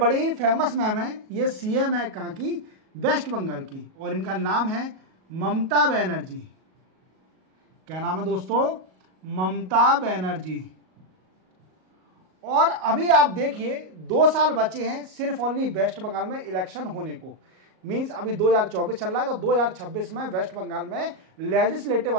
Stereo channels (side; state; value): left; late; 37 ms